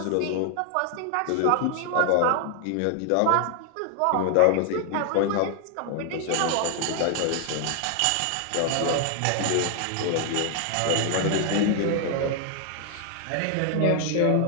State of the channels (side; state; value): both; different; correlation 0.00